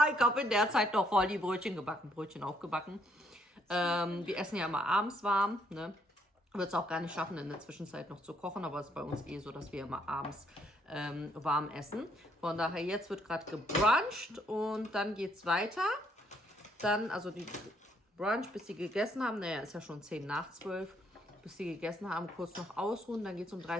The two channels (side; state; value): both; normal; correlation 0.70